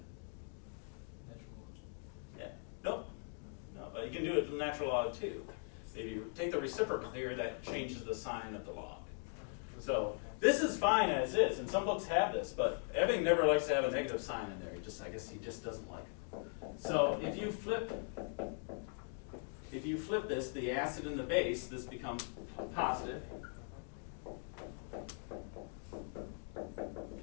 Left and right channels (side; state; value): right; silent; 51 dB below the other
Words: Natural log. Yeah. Nope. No, but you can do it with natural log too. If you take the reciprocal here, that changes the sign of the log. So this is fine as is, and some books have this, but Ebbing never likes to have a negative sign in there. I guess he just doesn't like it. So if you flip this, the acid and the base, this becomes positive.